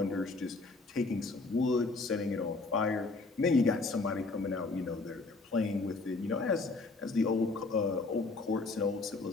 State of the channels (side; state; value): right; quieter; 3.6 dB